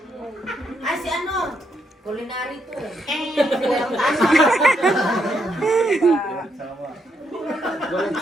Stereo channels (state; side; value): normal; both; correlation 0.78